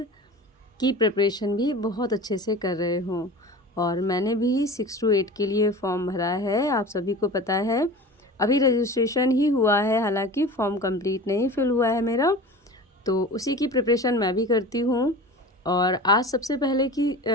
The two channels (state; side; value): normal; both; correlation 0.36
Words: की प्रिपरेशन भी बहुत अच्छे से कर रहे हों। और मैंने भी 6 to 8 के लिए फॉर्म भरा है, आप सभी को पता है। अभी रजिस्ट्रेशन ही हुआ है, हालांकि फॉर्म कंप्लीट नहीं फिल हुआ है मेरा, तो उसी की प्रिपरेशन मैं भी करती हूँ। और आज सबसे पहले की